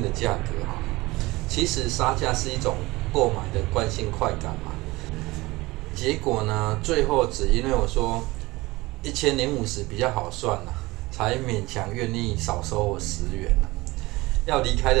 的价格其实杀价是一种购买的惯性快感嘛。结果呢，最后只因为我说1050比较好算才勉强愿意少收我10元要离开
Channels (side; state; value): left; quieter; 20.8 dB